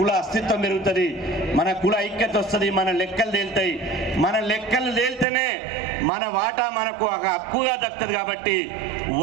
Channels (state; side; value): drops out; left; at 5.2 s